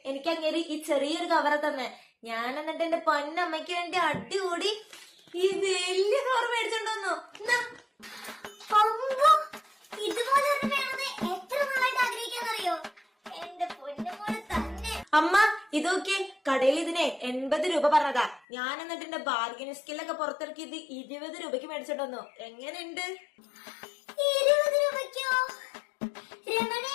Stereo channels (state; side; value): drops out; right; at 18.4 s